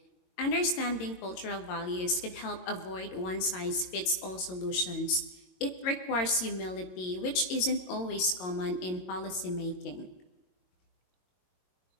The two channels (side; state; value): right; late; 22 ms